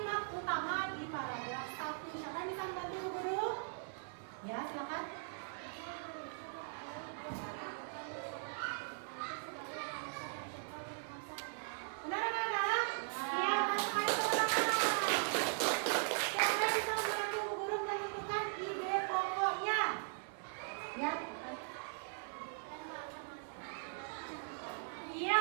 utama di paragraf 1. Siapa yang bisa membantu Bu Guru? Ya, silakan. Benar anak-anak? Iya, masukkan itu anak-anak. Siapa yang bisa membantu Bu Guru menentukan ide pokoknya? Ya. Iya,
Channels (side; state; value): left; silent; 51 dB below the other